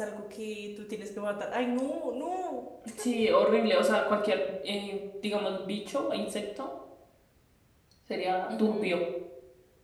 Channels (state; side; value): identical; both; correlation 1.00